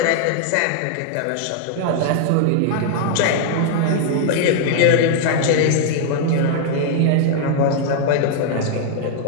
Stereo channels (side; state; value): both; different; correlation -0.01